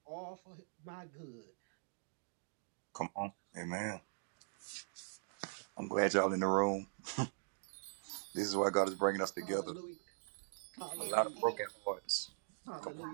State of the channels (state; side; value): silent; left; digital silence